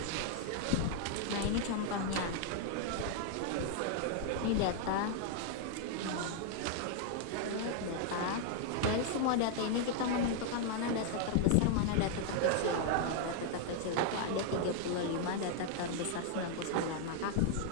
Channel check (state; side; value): different; both; correlation 0.00